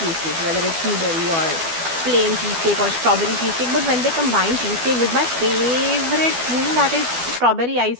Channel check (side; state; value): left; late; 12 ms